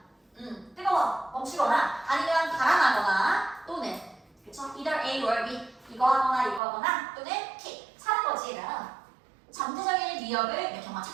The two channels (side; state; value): left; drops out; at 6.6 s